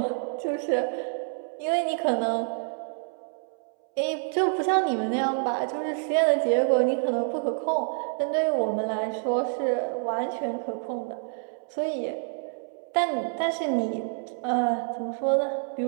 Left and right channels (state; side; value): silent; left; 60 dB below the other